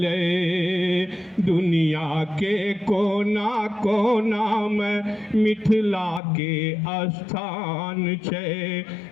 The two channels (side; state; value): right; drops out; at 6.2 s